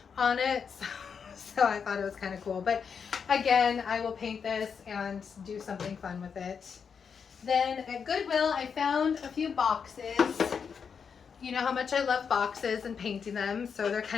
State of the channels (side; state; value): right; quieter; 6.4 dB